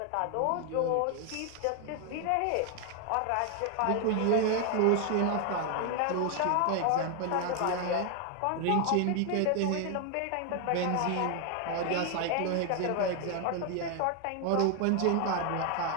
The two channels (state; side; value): different; both; correlation 0.00